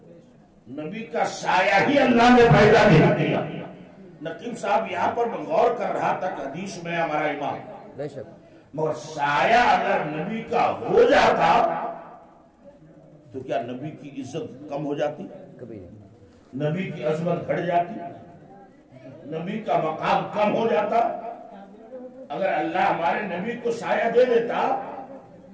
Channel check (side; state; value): both; identical; correlation 1.00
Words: نبی کا سایہ ہی اللہ نے پیدا نہیں کیا. نقیب صاحب یہاں پر میں غور کر رہا تھا کہ حدیث میں ہمارا امام، بے شک، مگر سایہ اگر نبی کا ہو جاتا تو کیا نبی کی عزت کم ہو جاتی؟ کبھی نہیں. نبی کی عظمت گھٹ جاتی؟ نبی کا مقام کم ہو جاتا؟ اگر اللہ ہمارے نبی کو سایہ دے دیتا